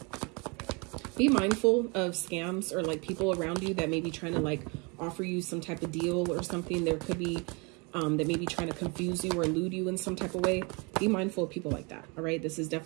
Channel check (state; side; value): quieter; left; 30.2 dB